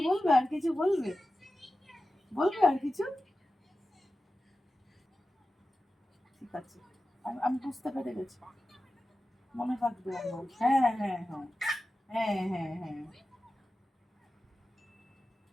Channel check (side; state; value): both; normal; correlation 0.94